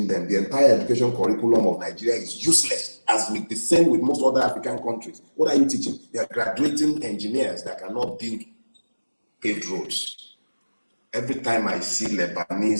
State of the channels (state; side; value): inverted; both; correlation -1.00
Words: them? The entire education curriculum of Nigeria is useless, as with the same with most other African countries. What are you teaching? They are graduating engineers that cannot build paved roads. Every time I see Lebanese,